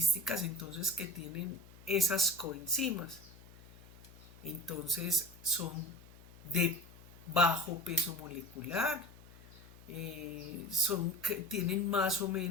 entonces que tienen esas coenzimas? Entonces son de bajo peso molecular, tienen más o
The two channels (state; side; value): noise; left; hum, 21 dB below the sound